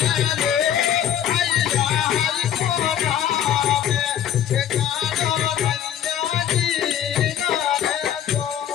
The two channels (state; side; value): quieter; right; 10.1 dB